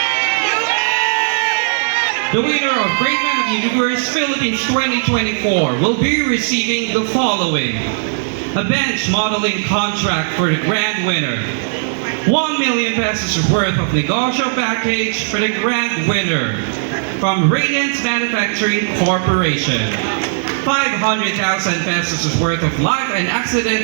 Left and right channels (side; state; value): left; silent; 62 dB below the other